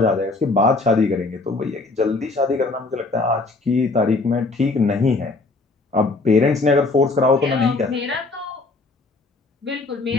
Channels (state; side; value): quieter; right; 3.5 dB